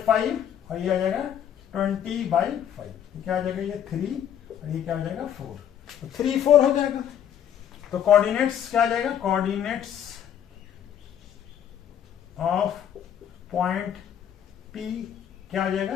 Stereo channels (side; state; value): right; quieter; 9.6 dB